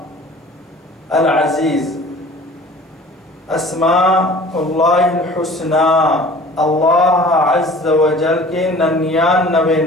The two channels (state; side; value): normal; both; correlation 0.46